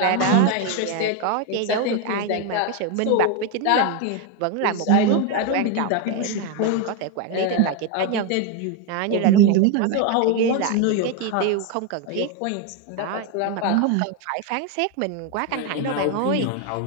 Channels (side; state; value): both; different; correlation 0.02